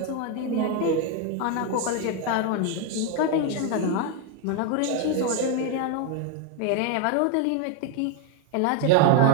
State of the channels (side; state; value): both; different; correlation 0.01